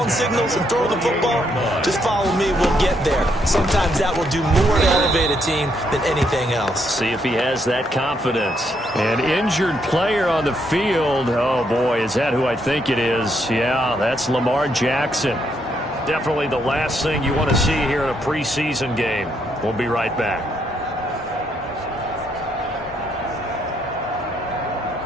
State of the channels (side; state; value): both; normal; correlation 0.75